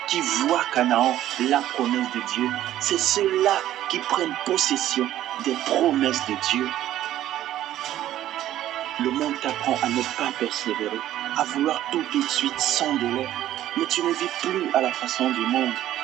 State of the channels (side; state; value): left; quieter; 12.9 dB